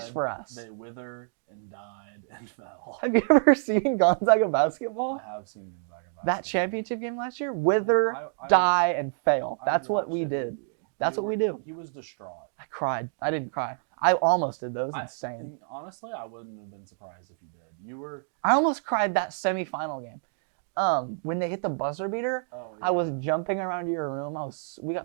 for us. They wither and died and fell. Have you ever seen Gonzaga basketball? I have seen Gonzaga basketball. That championship game last year? Wither, I die, and fail. That's what we watched it did. with you. That's what we do. He was distraught. I cried. I didn't cry. I almost did. That was insane. Honestly, I wouldn't have been surprised if you did. You were. I almost cried that semifinal game. When they hit the buzzer beater, oh, yeah. I was jumping around your room. We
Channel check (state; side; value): silent; left; digital silence